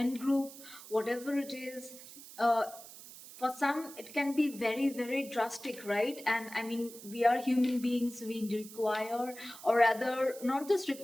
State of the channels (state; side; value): noise; right; hiss, 16 dB below the sound